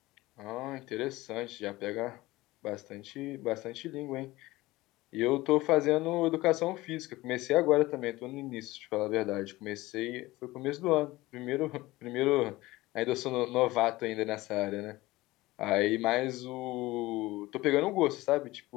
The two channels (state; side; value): quieter; right; 19.1 dB